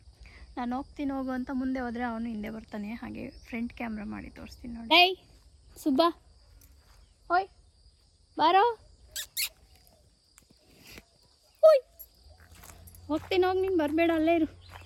ಹೋಗು ಅಂತ ಮುಂದೆ ಹೋದರೆ ಅವನು ಹಿಂದೆ ಬರ್ತಾನೆ. ಹಾಗೆ ಫ್ರಂಟ್ ಕ್ಯಾಮ್ರಾ ಮಾಡಿ ತೋರಿಸ್ತೀನಿ ನೋಡಿ. ಏಯ್ ಸುಬ್ಬಾ, ಓಯ್ ಬಾರೋ, ಓಯ್ ಹೋಗ್ತೀನಿ, ಹೋಗಿ ನೀನು ಬರಬೇಡ, ಅಲ್ಲೇ ಇರು.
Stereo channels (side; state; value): both; identical; correlation 1.00